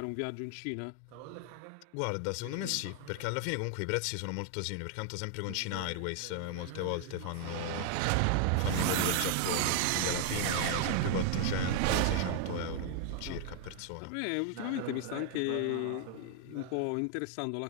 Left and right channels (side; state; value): both; different; correlation 0.00